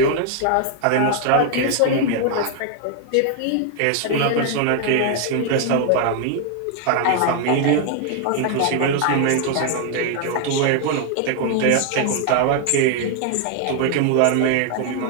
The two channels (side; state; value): both; different; correlation 0.00